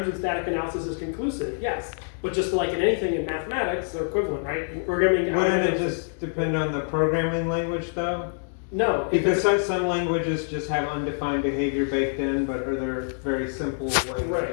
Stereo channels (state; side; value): silent; right; digital silence